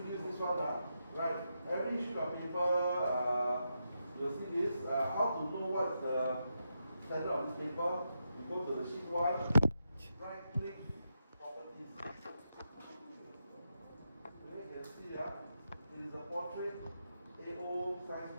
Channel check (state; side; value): inverted; both; correlation -0.85